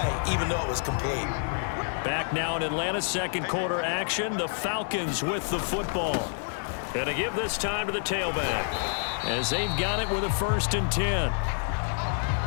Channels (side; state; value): right; silent; 58 dB below the other